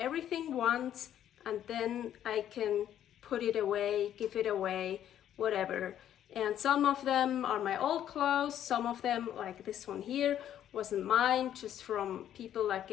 once and then I can put it away, give it away, whatever. And some of them are my old clothes, some of them, like this one here, wasn't mine, just from people that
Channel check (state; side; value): quieter; right; 10.8 dB